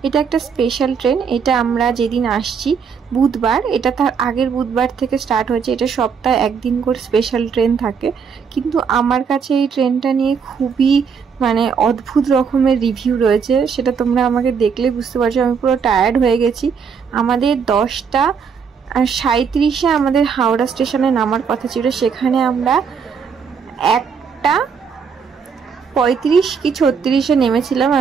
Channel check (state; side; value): quieter; left; 6.3 dB